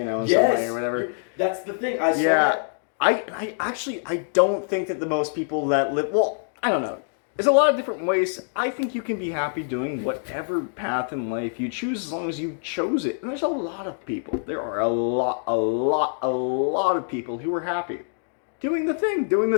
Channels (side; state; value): right; silent; digital silence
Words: some way or whatever. That's the thing. I saw that. I don't think that the most people that live, I don't know. There's a lot of different ways. I think you can be happy doing whatever path in life you choose, as long as you chose it. And there's a lot of people. There are a lot of people who are happy doing the thing